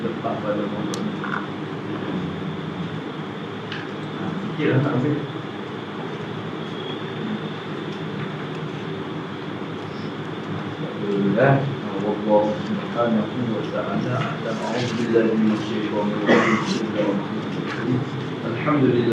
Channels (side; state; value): both; identical; correlation 1.00